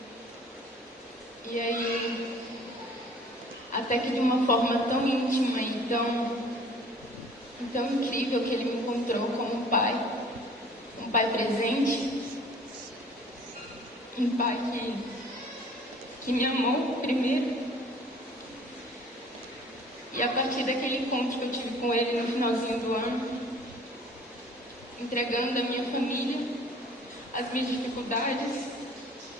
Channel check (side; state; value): both; normal; correlation 0.51